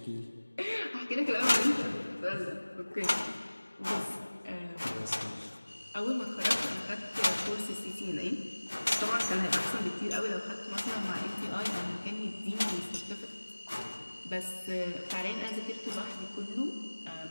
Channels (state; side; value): inverted; both; correlation -1.00